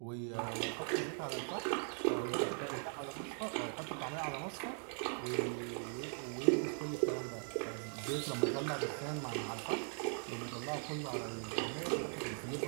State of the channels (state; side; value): silent; left; 51 dB below the other